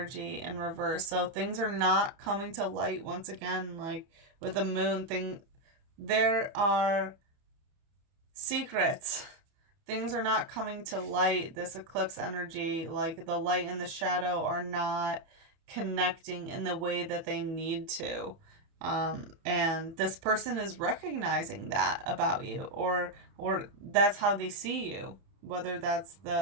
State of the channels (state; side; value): late; left; 30 ms